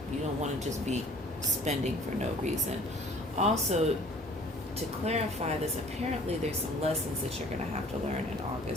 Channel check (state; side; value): normal; both; correlation 0.51